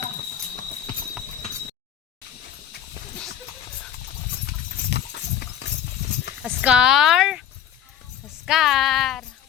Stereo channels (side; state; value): right; quieter; 9.7 dB